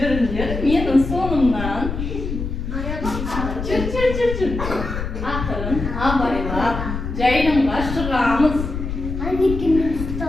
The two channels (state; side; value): noise; left; rumble, 5 dB below the sound